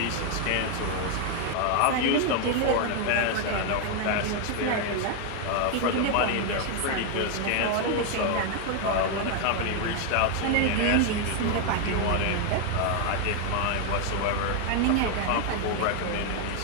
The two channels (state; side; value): different; both; correlation 0.01